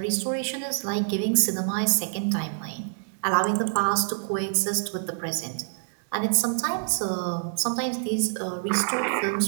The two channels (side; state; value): left; silent; digital silence